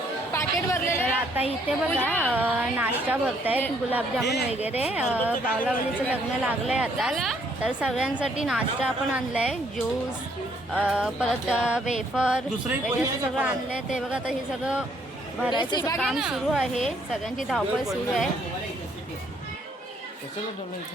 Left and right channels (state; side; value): normal; both; correlation 0.67